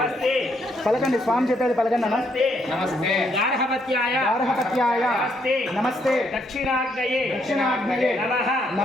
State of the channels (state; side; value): normal; both; correlation 0.73